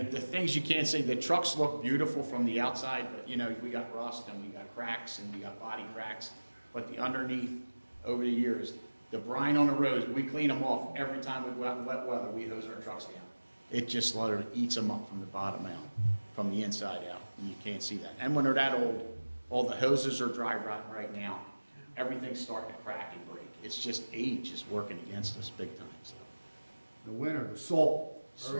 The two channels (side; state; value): both; inverted; correlation -1.00